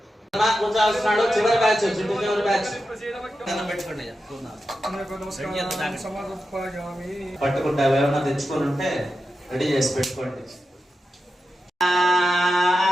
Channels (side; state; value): both; normal; correlation 0.90